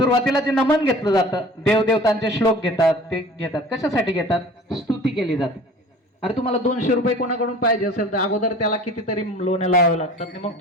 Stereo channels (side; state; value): both; normal; correlation 0.44